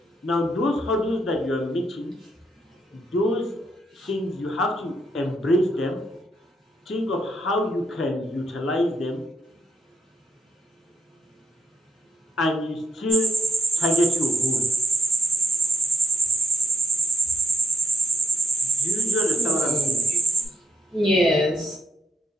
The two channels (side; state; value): both; normal; correlation 0.76